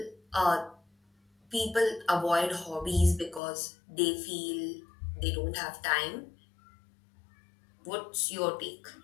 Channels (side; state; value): right; drops out; at 3.4 s